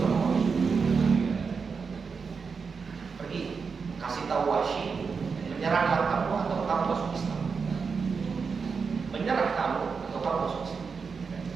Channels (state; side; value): quieter; left; 5.4 dB